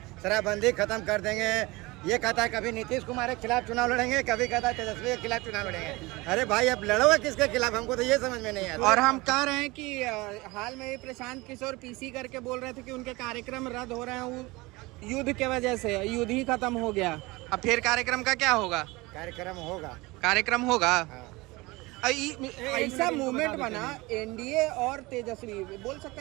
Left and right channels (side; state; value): left; quieter; 22.6 dB